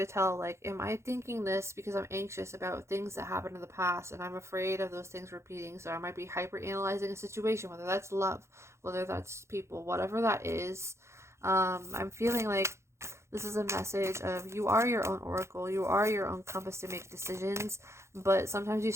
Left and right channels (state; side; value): late; left; 0.13 ms